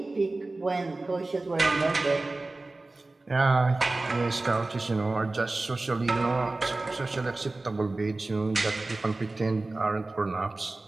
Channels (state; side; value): quieter; left; 3.1 dB